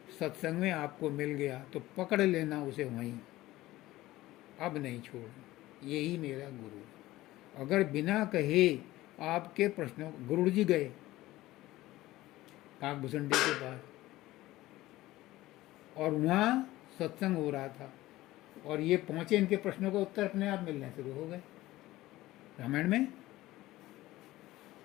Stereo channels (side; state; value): right; quieter; 17.0 dB